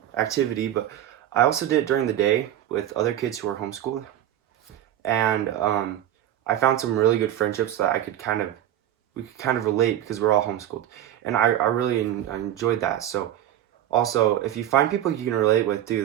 activity. But I also did it during the day with other kids who were homeschooled, and I found some really good friendships that we could kind of relate because we're all homeschooled, and I really enjoyed that. So also, if you find people you can relate with too,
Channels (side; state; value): left; quieter; 11.8 dB